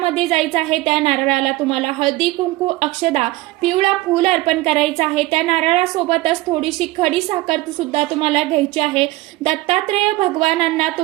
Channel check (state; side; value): quieter; left; 19.1 dB